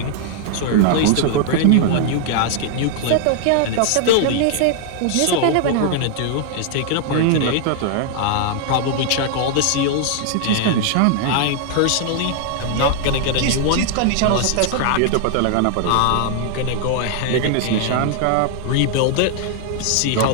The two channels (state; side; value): different; both; correlation 0.00